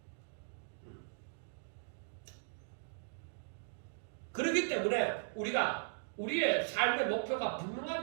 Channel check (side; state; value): left; silent; digital silence